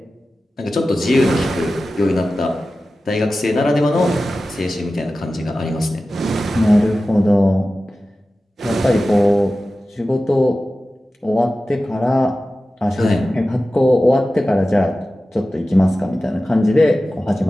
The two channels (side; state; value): both; normal; correlation 0.95